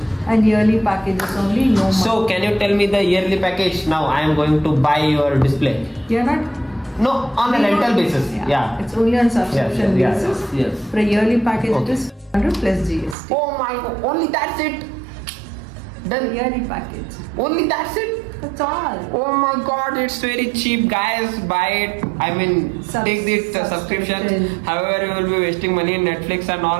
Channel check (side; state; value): left; drops out; at 13.2 s